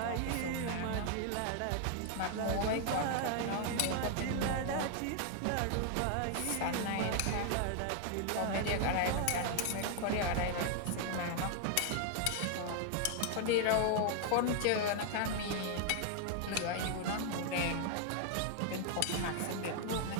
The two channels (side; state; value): both; different; correlation 0.00